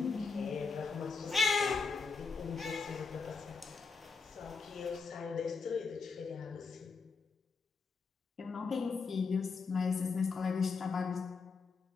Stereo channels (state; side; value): quieter; right; 4.7 dB